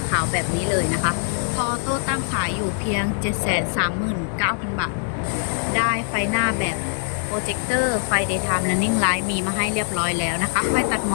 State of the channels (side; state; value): right; silent; digital silence